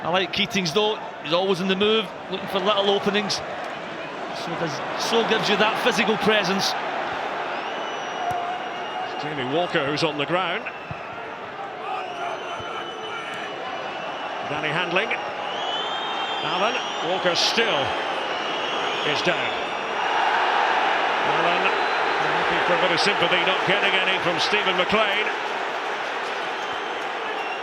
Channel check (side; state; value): both; identical; correlation 1.00